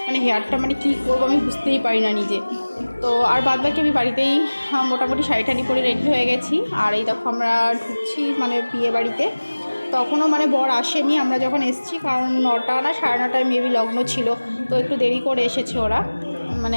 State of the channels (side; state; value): both; inverted; correlation -1.00